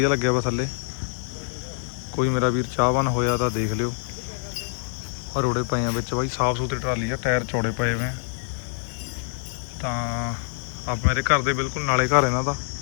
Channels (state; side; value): silent; right; 62 dB below the other